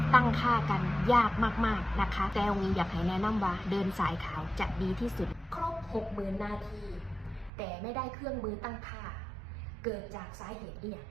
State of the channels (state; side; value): drops out; left; at 7.5 s